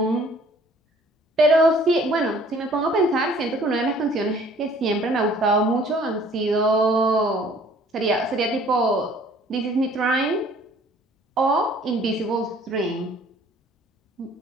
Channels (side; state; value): both; normal; correlation 0.56